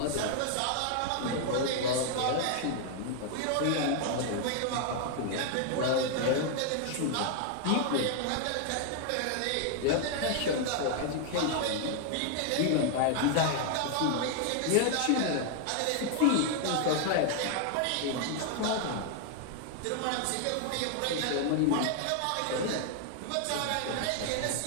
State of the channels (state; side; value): different; both; correlation 0.00